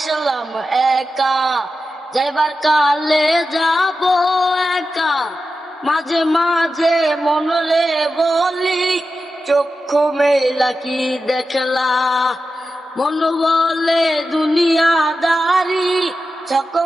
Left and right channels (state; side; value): normal; both; correlation 0.91